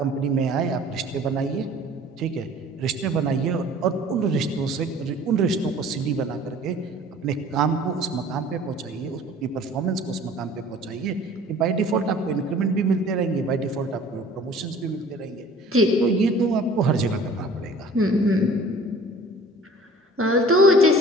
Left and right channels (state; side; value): normal; both; correlation 0.48